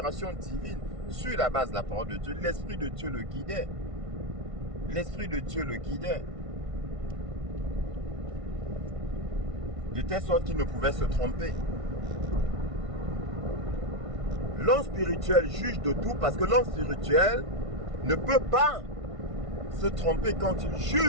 divine, sur la base de la parole de Dieu. L'Esprit de Dieu le guidait. L'Esprit de Dieu le guidait. De telle sorte qu'il ne pouvait se tromper. L'homme spirituel juge de tout parce que l'homme spirituel ne peut pas se tromper quand il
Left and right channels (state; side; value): late; left; 1.5 ms